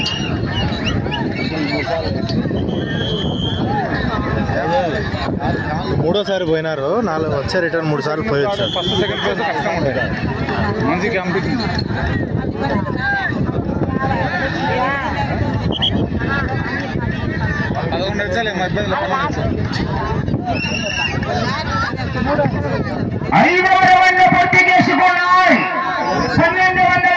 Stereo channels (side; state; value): both; identical; correlation 1.00